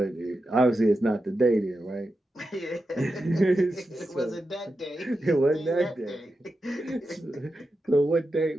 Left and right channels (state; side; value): normal; both; correlation 0.89